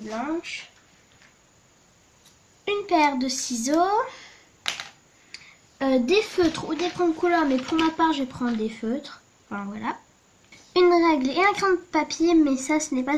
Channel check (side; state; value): both; identical; correlation 1.00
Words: une paire de ciseaux, des feutres ou des crayons de couleur, mais pour ma part je vais prendre des feutres, enfin, voilà, une règle et un crayon de papier, mais ça ce n'est